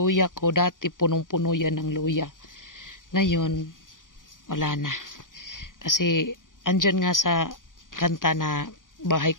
ko, dati punong-puno yan ng luya. Ngayon, wala na. Kasi, andyan nga sa kanta na bahay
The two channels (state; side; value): late; right; 0.89 ms